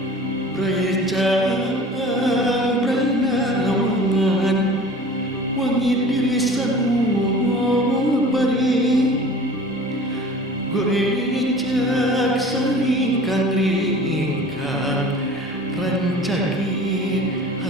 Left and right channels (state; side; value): normal; both; correlation 0.43